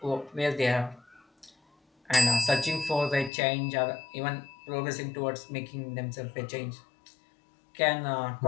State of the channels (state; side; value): drops out; right; at 3.3 s